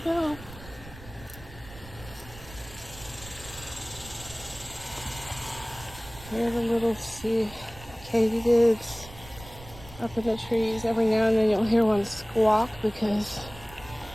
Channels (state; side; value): noise; right; rumble, 17 dB below the sound